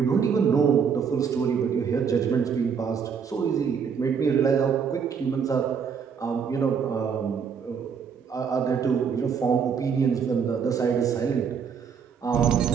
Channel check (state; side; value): quieter; left; 6.6 dB